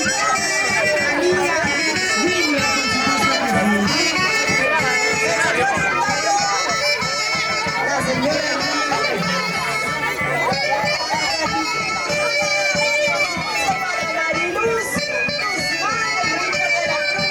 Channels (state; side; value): identical; both; correlation 1.00